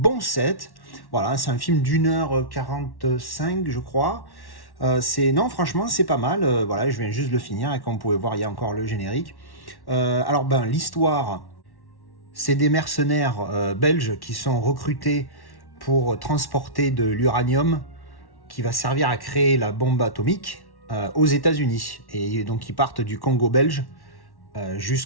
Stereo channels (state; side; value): late; right; 1.1 ms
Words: 7. Voilà, c'est un film d'1h45, je crois. Non, franchement, c'est pas mal. Voilà, je viens juste de le finir et comme vous pouvez voir, il y a encore le générique. Alors, l'histoire, c'est des mercenaires belges qui sont recrutés pour transporter de l'uranium qui va servir à créer la bombe atomique aux États-Unis. Et donc, ils partent du Congo belge.